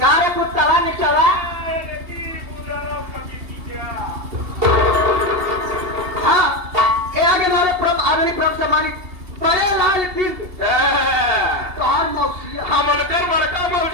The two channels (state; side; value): late; left; 2.7 ms